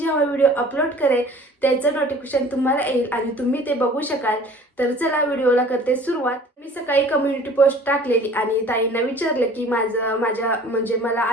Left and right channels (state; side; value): normal; both; correlation 0.48